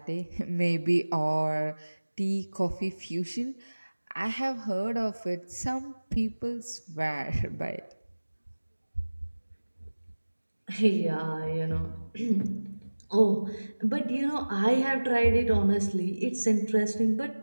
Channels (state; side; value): inverted; both; correlation -1.00